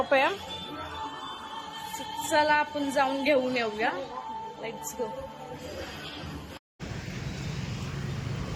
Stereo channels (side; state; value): both; identical; correlation 1.00